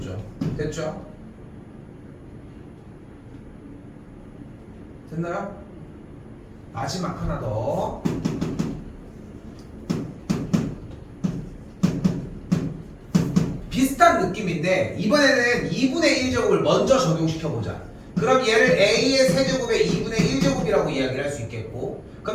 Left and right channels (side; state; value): both; identical; correlation 1.00